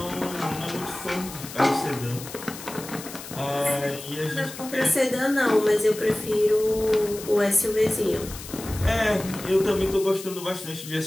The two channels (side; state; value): left; noise; hiss, 13 dB below the sound